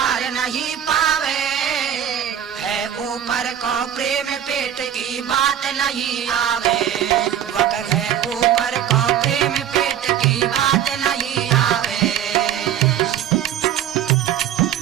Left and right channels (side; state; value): left; quieter; 10.1 dB